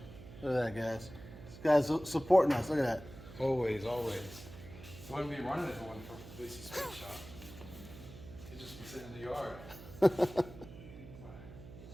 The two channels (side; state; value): right; noise; hum, 15 dB below the sound